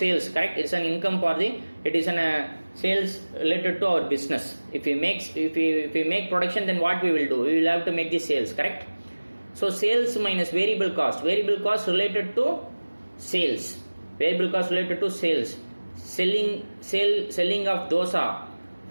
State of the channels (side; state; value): both; inverted; correlation -1.00